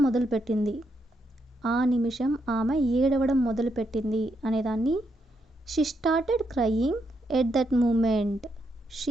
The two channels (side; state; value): both; normal; correlation 0.79